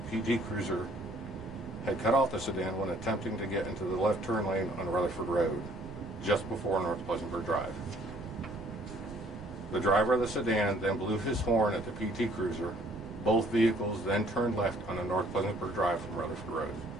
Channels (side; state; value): right; noise; rumble, 15 dB below the sound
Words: PT Cruiser had cut off the sedan when attempting to get into the left turn lane on Rutherford Road, just before North Pleasantburg Drive. The driver of the sedan then blew his horn at the PT Cruiser. Both vehicles then turned left on the North Pleasantburg Drive from Rutherford Road.